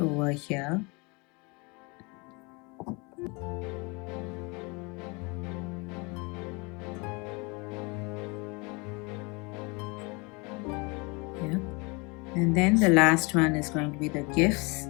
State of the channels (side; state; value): right; quieter; 28.7 dB